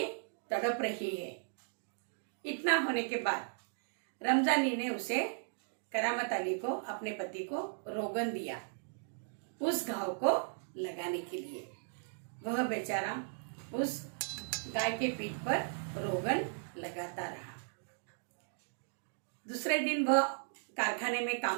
तड़प रही है। इतना होने के बाद रमजानी ने उसे, करामत अली को, अपने पति को रोगन दिया उस घाव को लगाने के लिए। वह बेचारा उस गाय के पीठ पर रोगन लगाता रहा। दूसरे दिन वह कारखाने में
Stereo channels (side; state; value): left; silent; digital silence